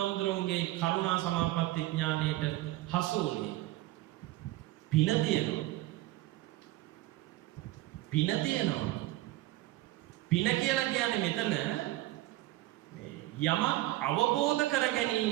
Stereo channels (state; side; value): quieter; left; 16.9 dB